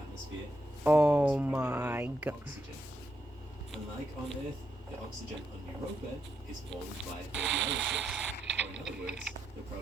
Oh my god. Oxygen. Unlike on Earth, the oxygen on Europa is formed by radiolysis, or in other words, the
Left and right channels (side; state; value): both; normal; correlation 0.81